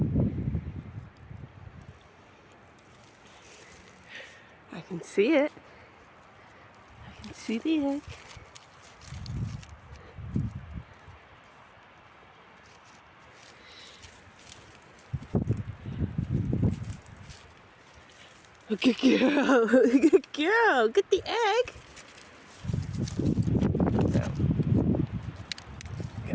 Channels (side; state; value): both; identical; correlation 1.00